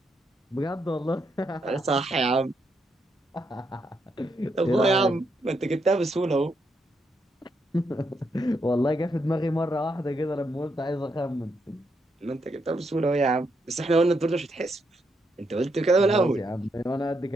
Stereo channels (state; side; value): normal; both; correlation 0.79